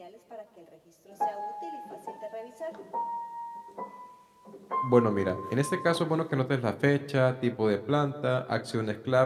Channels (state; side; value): identical; both; correlation 1.00